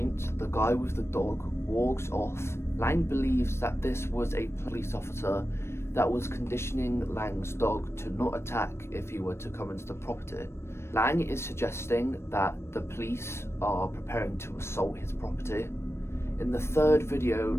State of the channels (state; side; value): late; right; 0.12 ms